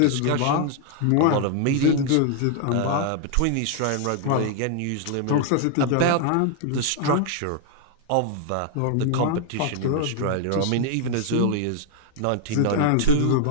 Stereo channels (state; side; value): different; both; correlation 0.00